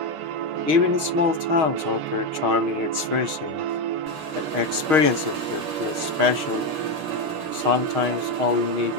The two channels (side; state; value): left; late; 6.3 ms